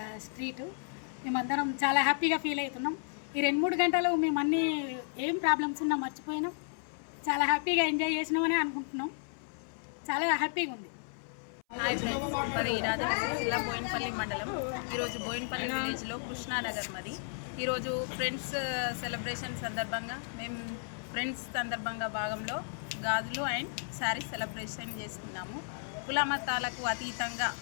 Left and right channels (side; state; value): right; silent; 55 dB below the other